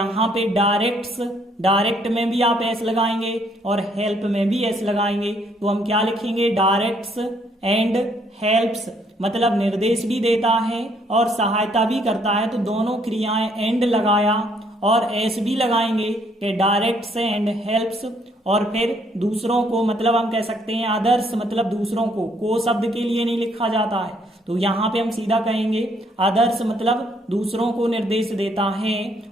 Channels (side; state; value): both; normal; correlation 0.67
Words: पे डायरेक्ट्स, डायरेक्ट में भी आप एस लगाएंगे और हेल्प में भी एस लगाएंगे, तो हम क्या लिखेंगे, डायरेक्ट्स एंड हेल्प्स, मतलब निर्देश भी देता है और सहायता भी करता है, तो दोनों क्रियाएं एंड लगाया और एस भी लगाएंगे कि डायरेक्ट्स एंड हेल्प्स। और फिर दूसरों को मतलब हम कह सकते हैं अदर्स, मतलब दूसरों को शब्द के लिए नहीं लिखा जाता है, तो यहाँ पे हम सीधा कहेंगे अदर्स मतलब दूसरों को निर्देश देता है।